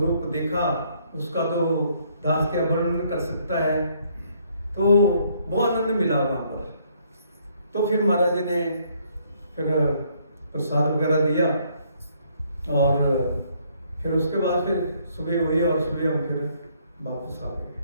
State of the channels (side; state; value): both; inverted; correlation -0.67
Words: देखा उसका तो दास क्या वर्णन कर सकता है। तो बहुत आनंद मिला वहाँ पर। तो फिर महाराज जी ने फिर प्रसाद वगैरह दिया और फिर उसके बाद फिर सुबह हुई और सुबह हम फिर वापस आ गए।